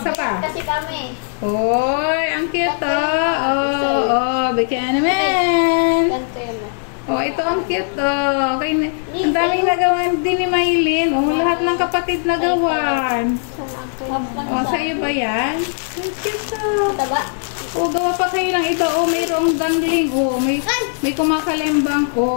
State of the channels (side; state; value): right; silent; digital silence